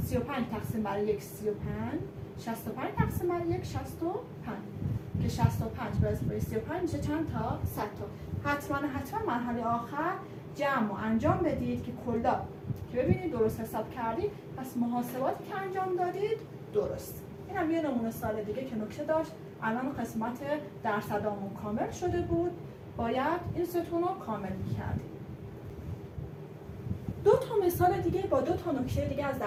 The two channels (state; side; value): identical; both; correlation 1.00